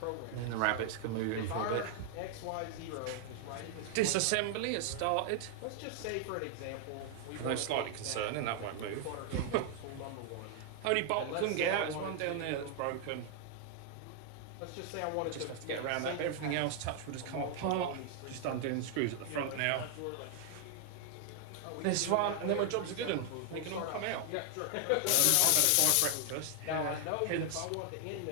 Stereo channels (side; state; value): both; different; correlation 0.00